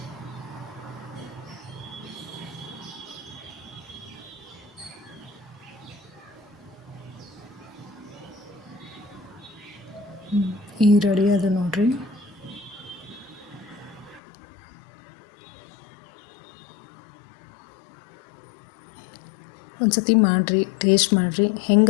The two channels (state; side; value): drops out; right; at 14.2 s